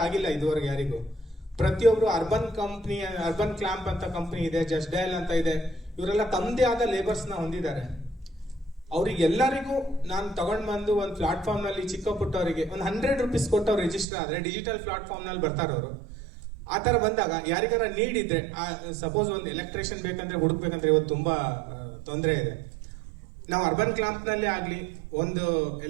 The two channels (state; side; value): drops out; left; at 14.1 s